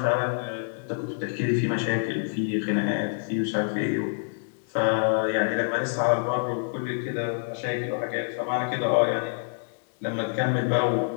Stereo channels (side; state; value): right; silent; digital silence